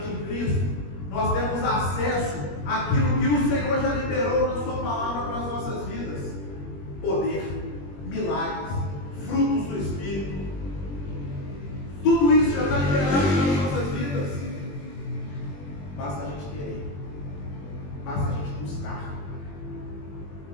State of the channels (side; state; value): right; late; 21 ms